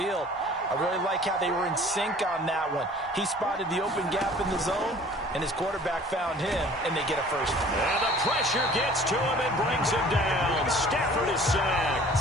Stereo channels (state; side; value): normal; both; correlation 0.49